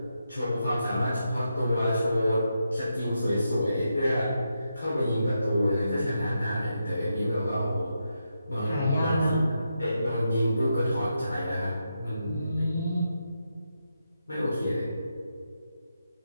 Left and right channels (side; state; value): both; inverted; correlation -0.85